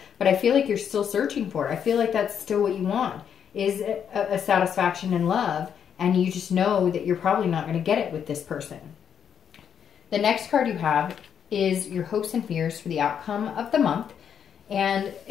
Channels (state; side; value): quieter; right; 8.1 dB